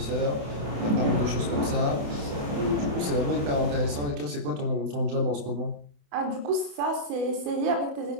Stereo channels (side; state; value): left; late; 28 ms